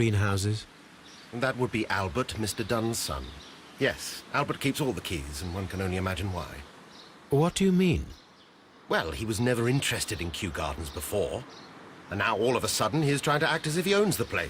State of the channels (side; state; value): both; identical; correlation 1.00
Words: That would be Albert, Mr. Dunn's son. Yes, Albert keeps all the keys, and one can only imagine why. What do you mean? Well, he was never interested in Kew Gardens before, and now all of a sudden he is trying to act as if he owns the